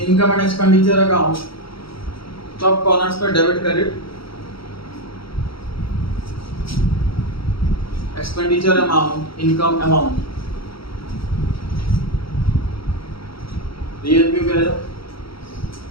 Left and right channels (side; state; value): right; late; 0.75 ms